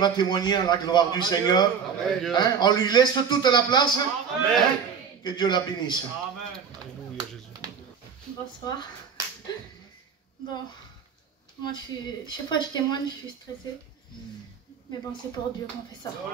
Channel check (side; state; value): left; quieter; 6.7 dB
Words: témoigner à la gloire du Seigneur. Hein? On lui laisse toute la place. Hein? Que Dieu la bénisse. Amen. Alléluia, Jésus. Bonsoir. Bon, moi chaque fois que je témoigne, je suis stressée. Mais bon, c'est pour Dieu qu'on fait ça.